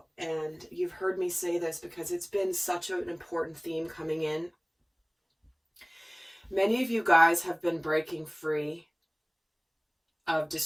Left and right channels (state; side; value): identical; both; correlation 1.00